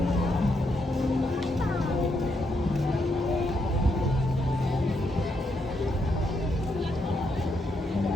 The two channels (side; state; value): both; normal; correlation 0.78